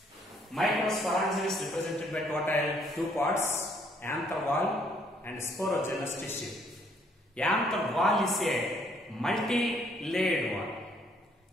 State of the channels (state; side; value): normal; both; correlation 0.66